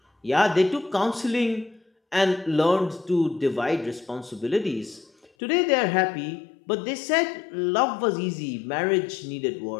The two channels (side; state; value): right; drops out; at 5.3 s